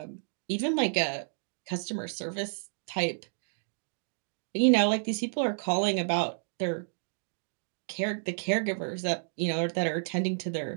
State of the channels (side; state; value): left; silent; digital silence